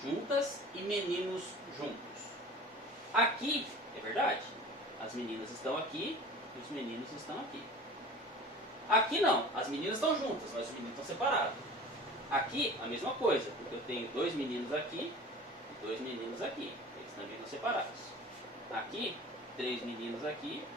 juntas e meninos juntos? Aqui, é verdade, as meninas estão aqui e os meninos estão aqui. Aqui não, as meninas estão juntas, mas os meninos estão separados. Aqui, a mesma coisa, porque eu tenho 2 meninos aqui e 2 meninos aqui, eles também estão separados. Aqui, 3 meninos aqui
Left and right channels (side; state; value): both; normal; correlation 0.40